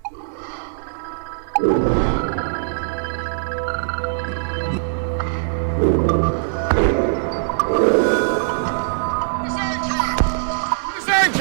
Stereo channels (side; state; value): left; silent; digital silence